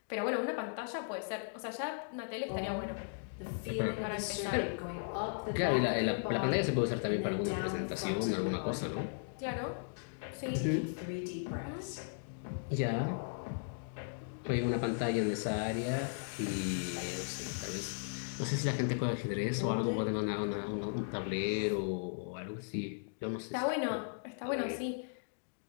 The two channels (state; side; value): silent; right; digital silence